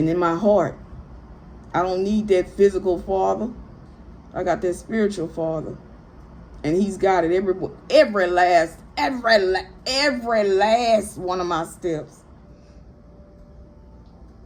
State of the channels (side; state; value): both; identical; correlation 1.00